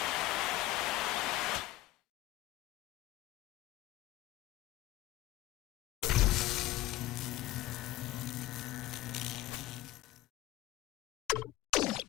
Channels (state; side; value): quieter; right; 15.9 dB